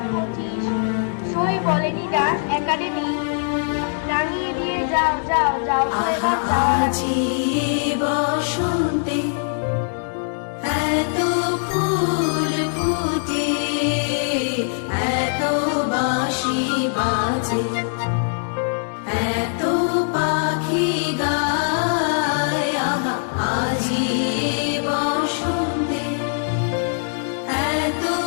সই বলেনি ডাক একাডেমি, রাঙিয়ে দিয়ে যাও যাও যাও তো এবার যাও। আজি বসন্তে এত ফুল ফুটে, এত বাঁশি বাজে, এত পাখি গায়। আহা আজি বসন্তে এত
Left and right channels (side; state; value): right; silent; 64 dB below the other